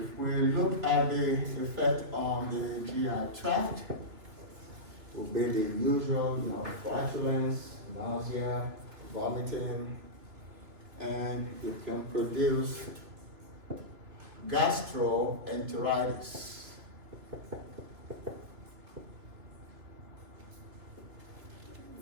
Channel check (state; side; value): late; left; 2.8 ms